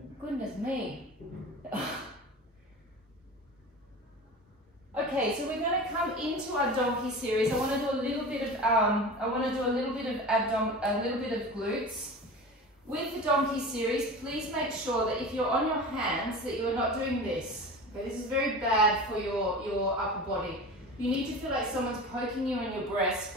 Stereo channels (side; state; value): both; normal; correlation 0.33